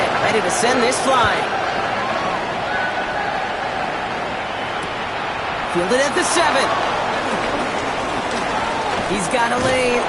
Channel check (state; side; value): identical; both; correlation 1.00